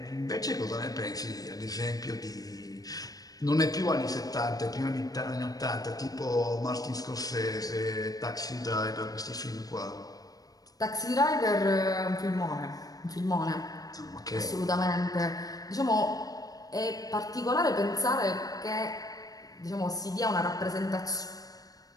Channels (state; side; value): late; right; 0.18 ms